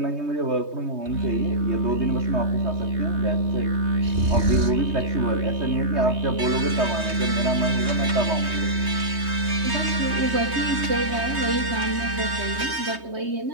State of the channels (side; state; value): left; late; 3.2 ms